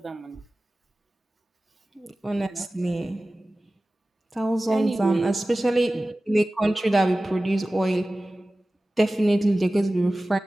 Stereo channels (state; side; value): normal; both; correlation 0.97